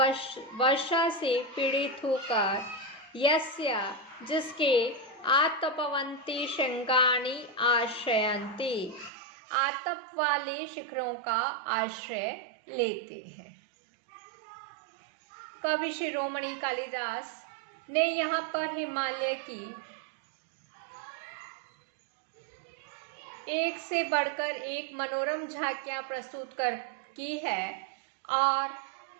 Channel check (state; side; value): drops out; left; at 9.1 s